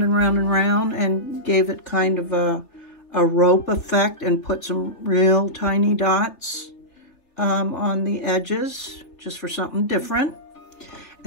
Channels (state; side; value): late; right; 3.1 ms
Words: and round and round and gave it kind of a rope effect and put some real tiny dots on the edges just for something different.